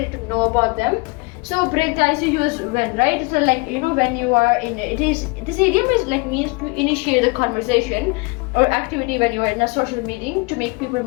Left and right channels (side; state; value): right; quieter; 28.0 dB